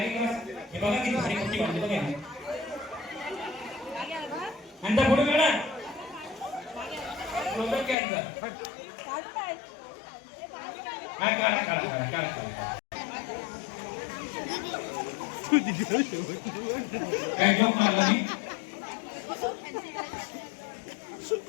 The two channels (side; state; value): right; drops out; at 8.0 s